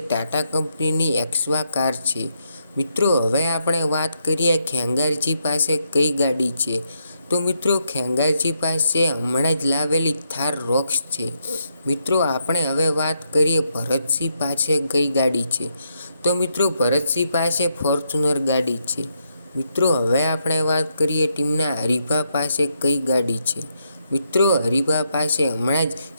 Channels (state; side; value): inverted; both; correlation -0.79